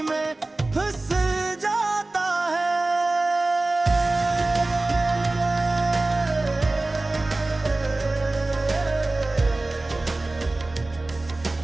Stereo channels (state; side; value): quieter; left; 3.0 dB